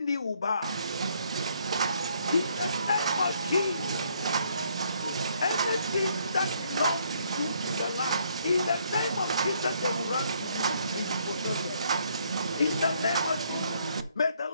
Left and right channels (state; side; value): inverted; both; correlation -0.68